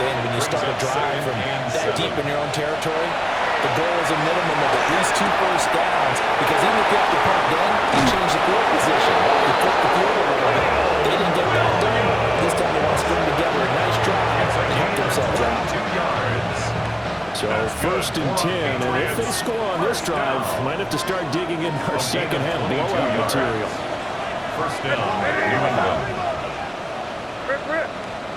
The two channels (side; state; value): both; identical; correlation 1.00